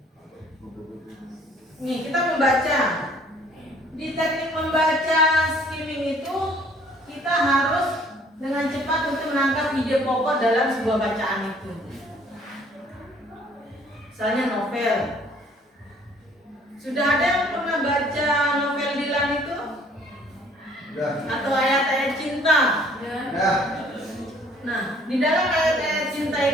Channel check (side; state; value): both; normal; correlation 0.58